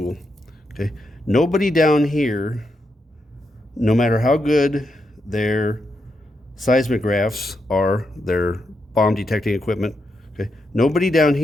Okay, nobody down here, no matter how good their seismographs are, their bomb detecting equipment, okay, nobody down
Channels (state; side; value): normal; both; correlation 0.83